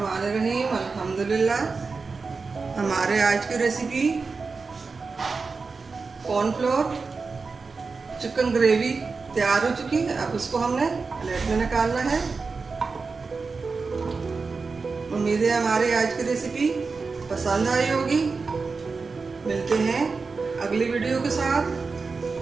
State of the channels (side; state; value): left; quieter; 4.5 dB